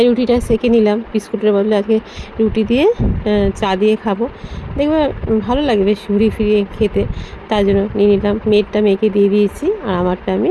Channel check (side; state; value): both; identical; correlation 1.00